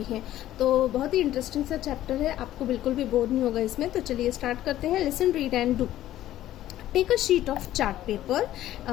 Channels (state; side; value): quieter; right; 13.5 dB